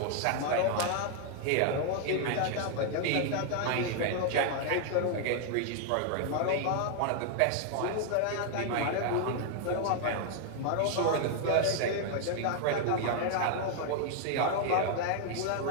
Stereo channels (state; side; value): different; both; correlation 0.00